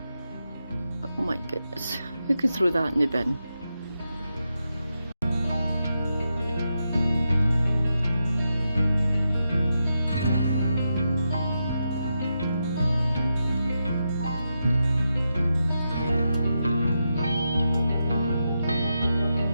But oh my goodness, who could throw that in the bin?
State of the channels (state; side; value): inverted; both; correlation -0.86